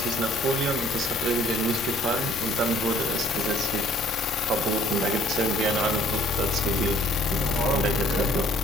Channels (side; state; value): both; normal; correlation 0.59